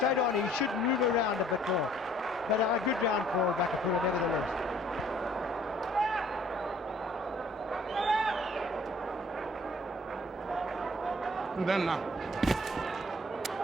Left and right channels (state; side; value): normal; both; correlation 0.58